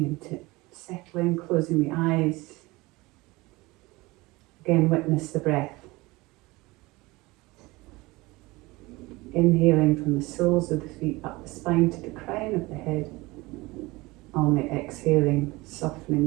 into it, settling, closing the eyes. Again, witness the breath. Inhaling from the soles of the feet up the spine to the crown of the head. On the exhaling,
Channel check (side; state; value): left; quieter; 22.0 dB